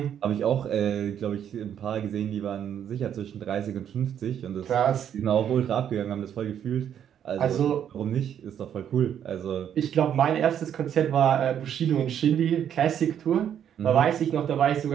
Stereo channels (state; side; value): quieter; left; 9.3 dB